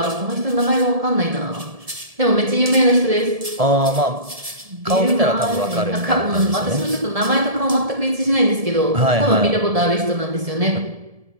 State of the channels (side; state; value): left; late; 1.7 ms